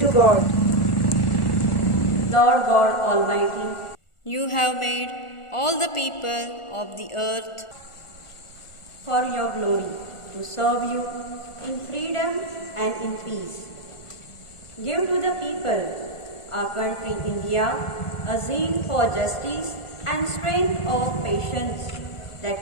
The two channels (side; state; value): right; late; 1.4 ms